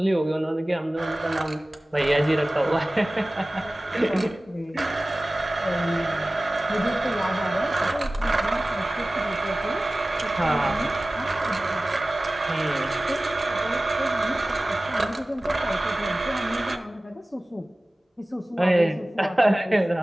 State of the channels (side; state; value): both; normal; correlation 0.97